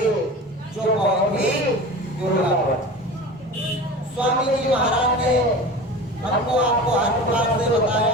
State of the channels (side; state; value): both; normal; correlation 0.34